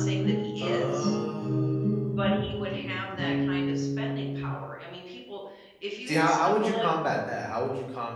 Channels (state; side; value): identical; both; correlation 1.00